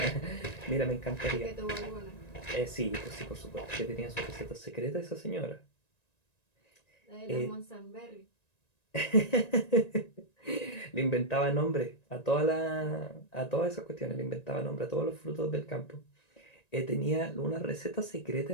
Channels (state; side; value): late; right; 1.9 ms